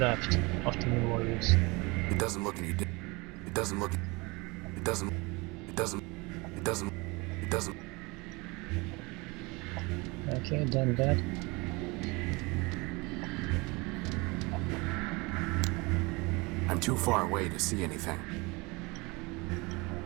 after Memorias. It doesn't look any different. It doesn't look... It doesn't... It doesn't... It doesn't... It doesn't... Okay, done that. I'm too far away to see anything.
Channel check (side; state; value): left; quieter; 25.7 dB